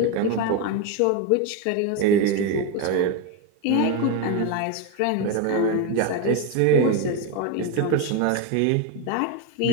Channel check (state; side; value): different; both; correlation 0.03